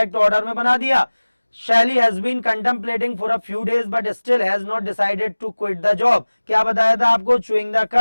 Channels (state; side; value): inverted; both; correlation -1.00